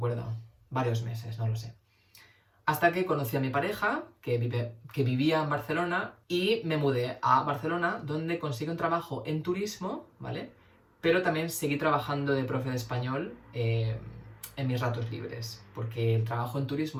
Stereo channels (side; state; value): both; identical; correlation 1.00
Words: varios meses, no lo sé. Hasta que conocí a mi pareja, que vivía en Barcelona, y me mudé a Barcelona, donde conseguí un trabajo en turismo, ¿vale? Pero también seguí trabajando de profe de español en mis ratos libres, porque el trabajo en